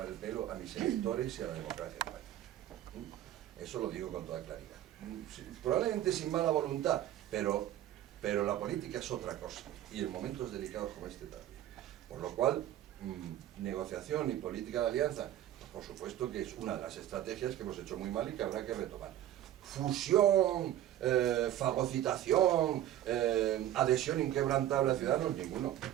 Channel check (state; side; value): quieter; left; 12.4 dB